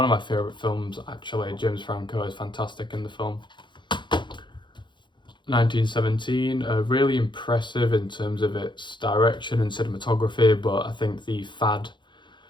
of my favourite films, actually. James Franco is fantastic in the film. 1917, really impressive in terms of its direction and cinematography, but I think the fad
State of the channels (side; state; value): right; late; 0.23 ms